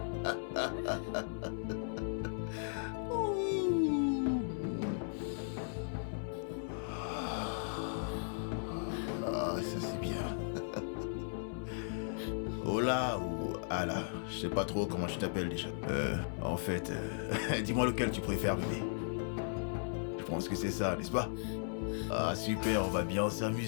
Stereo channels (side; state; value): right; silent; digital silence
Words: Ah, ça c'est bien. Hola ou Ala, je sais pas trop comment je t'appelle déjà. En fait, dis-moi lequel tu préfères, bébé. Je pense que c'est ça, n'est-ce pas? Ah super, on va bien